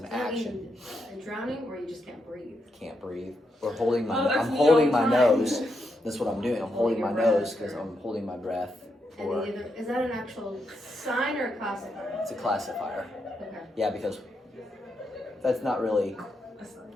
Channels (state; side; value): normal; both; correlation 0.82